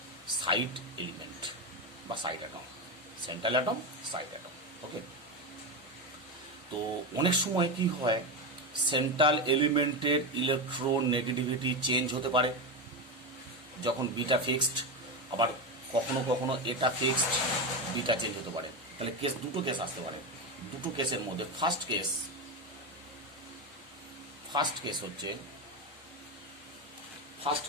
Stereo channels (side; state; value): both; normal; correlation 0.15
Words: সাইড এলিমেন্ট বা side atom, central atom, side atom. Okay, তো অনেক সময় কি হয়, সেন্ট্রাল এলিমেন্টের ইলেকট্রোনেগেটিভিটি চেঞ্জ হতে পারে যখন বিটা ফিক্সড, আবার কখনো কখনো এটা ফিক্সড, বিটা চেঞ্জ হতে পারে। তাহলে কেস, দুটো কেস আসতে পারে। দুটো কেসের মধ্যে ফার্স্ট কেস হচ্ছে,